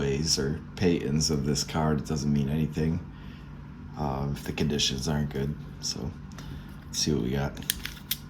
or Paytons of this card. It doesn't mean anything if the conditions aren't good. So let's see what we got.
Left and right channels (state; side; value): identical; both; correlation 1.00